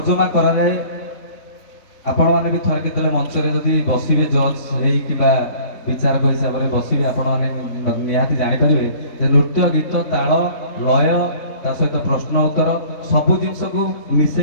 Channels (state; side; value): late; right; 3.6 ms